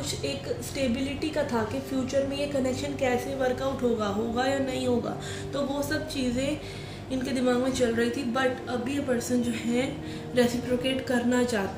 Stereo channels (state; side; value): identical; both; correlation 1.00